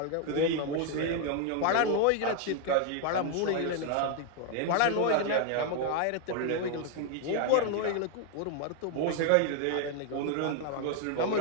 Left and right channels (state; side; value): different; both; correlation 0.00